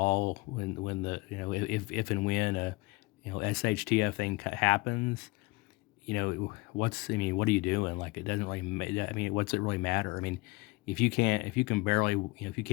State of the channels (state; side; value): quieter; right; 23.4 dB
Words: if and when a SHTF thing happens, what are you doing? Like, it doesn't really, what's it really matter? I mean, if you can't